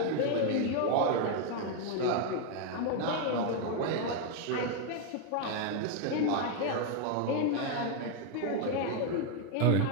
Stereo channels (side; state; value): both; different; correlation 0.01